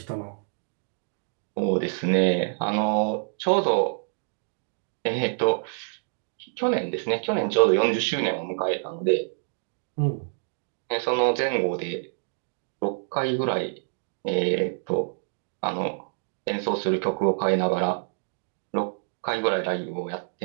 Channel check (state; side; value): silent; left; digital silence